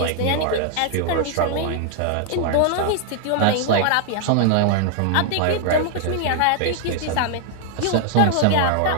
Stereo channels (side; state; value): both; different; correlation 0.00